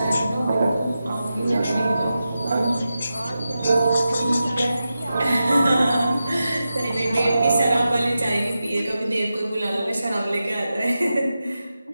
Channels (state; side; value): inverted; both; correlation -0.91